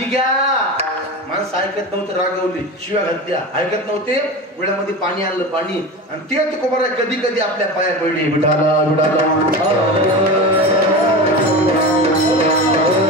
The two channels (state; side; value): normal; both; correlation 0.27